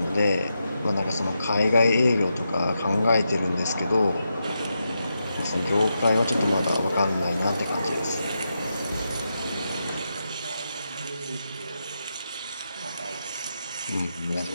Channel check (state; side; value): inverted; both; correlation -0.86